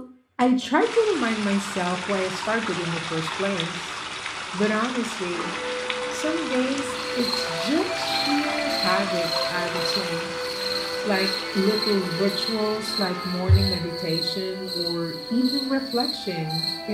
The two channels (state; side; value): identical; both; correlation 1.00